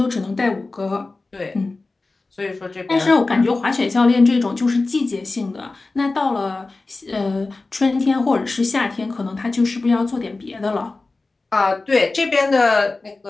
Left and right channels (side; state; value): right; quieter; 3.5 dB